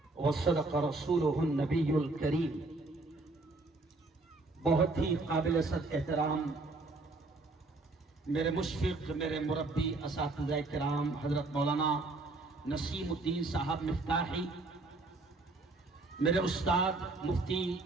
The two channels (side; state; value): left; quieter; 3.2 dB